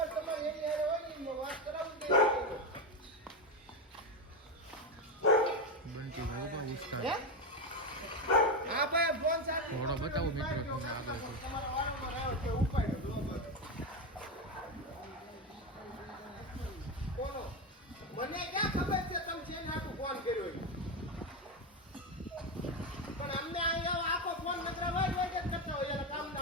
બંટીભાઈ ઉભા વિસ્તાર થોડો બતાવો મિત્રો તમને આગળ. મને ક્યાં ખબર છે તમે છે નાખું ફોન કર્યો પણ અમને અહીંયા આખો ફોન નકરા હોય જ કરતા હોય એટલે કામ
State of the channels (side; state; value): both; normal; correlation 0.12